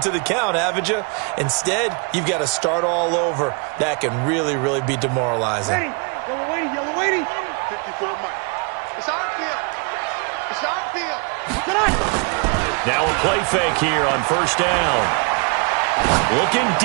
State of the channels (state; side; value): quieter; left; 33.6 dB